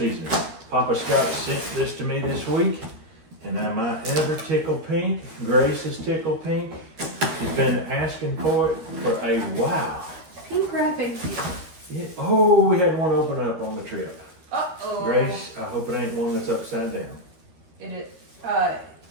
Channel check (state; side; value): late; left; 13 ms